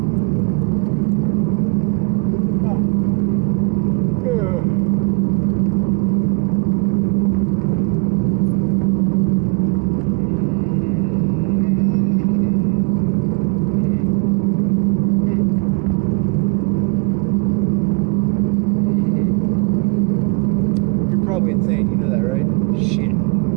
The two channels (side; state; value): left; quieter; 31.9 dB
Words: You're probably insane, you know that, right? Shit.